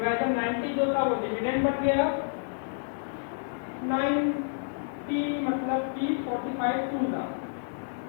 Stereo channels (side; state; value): right; silent; 58 dB below the other